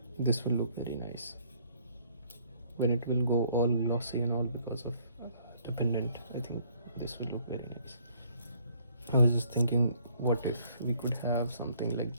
this will look very nice when it will go all glossy and all because of the pendant. I think this will look very nice. I was just thinking, what if we could have something like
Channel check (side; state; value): both; inverted; correlation -0.63